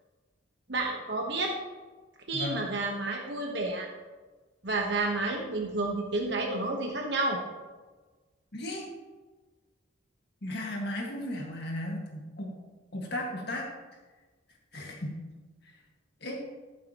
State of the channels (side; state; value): both; normal; correlation 0.18